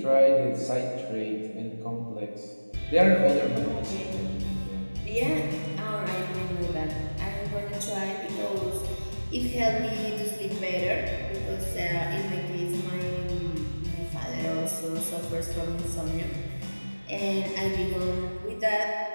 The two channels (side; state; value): both; inverted; correlation -1.00